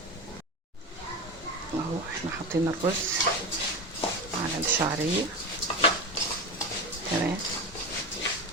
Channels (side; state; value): both; normal; correlation 0.22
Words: اهو احنا حاطين الرز على الشعرية. تمام.